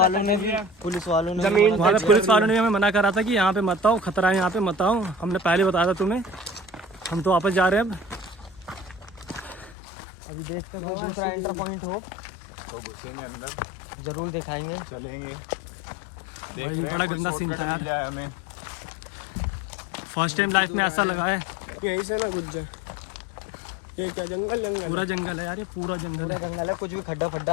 ने भी पुलिस वालों ने हमें मना करा था कि यहाँ पे मत आओ, खतरा है यहाँ पे मत आओ। हमने पहले बताया था तुम्हें। हम तो वापस जा रहे हैं अब। अभी देखते हैं दूसरा एंटर पॉइंट हो तो घुसेंगे अंदर, जरूर दिखाएंगे, चलेंगे। भाई बड़ा गंदा सीन था यार, हमें फर्स्ट टाइम लाइफ में ऐसा लगा है। यहीं से ना घुस जाए। ये क्या जंगल पूरा जंगल है यार, ये पूरा जंगल है। जंगल है, कुछ भी खड्डा आ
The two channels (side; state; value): right; drops out; at 9.8 s